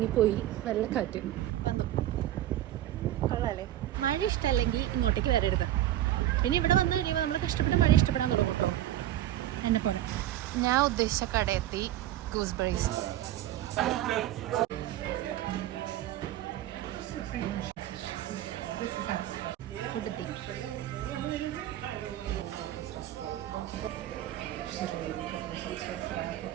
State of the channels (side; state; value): left; quieter; 13.4 dB